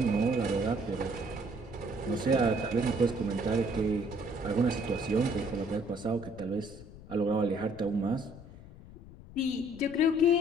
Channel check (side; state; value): left; noise; rumble, 17 dB below the sound